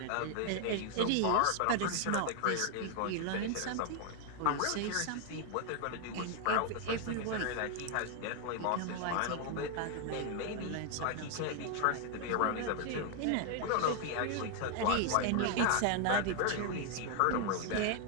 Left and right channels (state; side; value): different; both; correlation 0.00